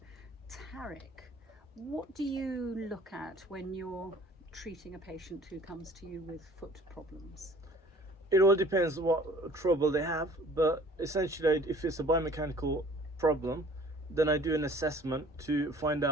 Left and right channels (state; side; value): normal; both; correlation 0.51